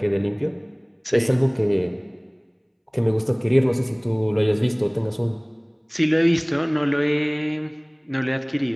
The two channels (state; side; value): identical; both; correlation 1.00